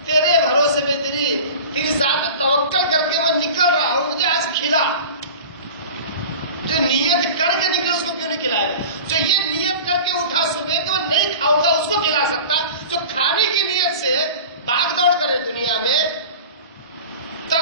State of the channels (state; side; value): inverted; both; correlation -0.37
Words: تیرے بھروسے پہ تیری ذات پہ توکل کر کے میں نکل رہا ہوں، مجھے آج کھلا. جو نیت کر کے نکلے اس کو کیوں نہیں کھلائے گا؟ جو یہ نیت کر کے اٹھا صبح کہ میں نہیں کھاؤں گا اس کو کھلا سکتا. جو کھانے کی نیت سے بھاگ دوڑ کرے دنیا میں،